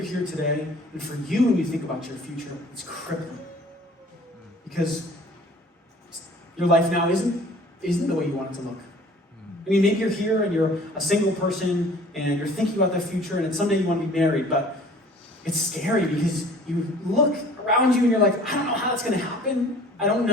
here today, and for you, when you think about your future, it's crippling. Because your life now isn't the way you want it to look. I mean, maybe you're here and you're a single person and you're thinking about the future and someday you want to be married, but it's scary because you look around you and you're like, I don't know how that's going to happen. I don't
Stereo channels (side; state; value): both; normal; correlation 0.50